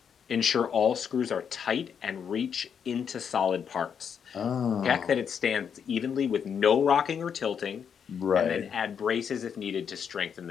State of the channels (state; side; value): quieter; right; 7.4 dB